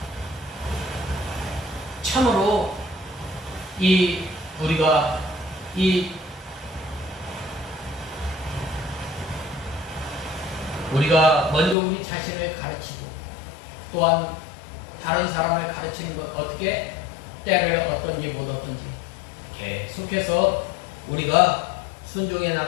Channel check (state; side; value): drops out; right; at 11.8 s